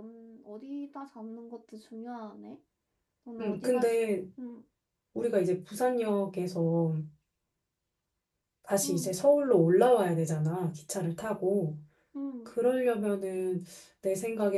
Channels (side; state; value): both; identical; correlation 1.00